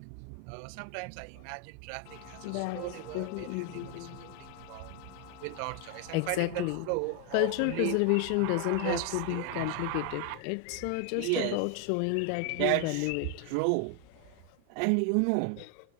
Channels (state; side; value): different; both; correlation 0.01